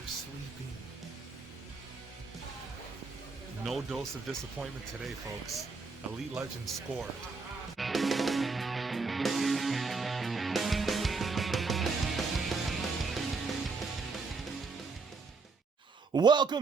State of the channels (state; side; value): quieter; left; 4.3 dB